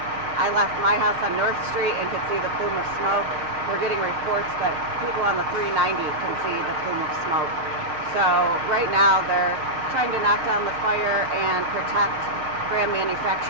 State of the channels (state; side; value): late; left; 6.4 ms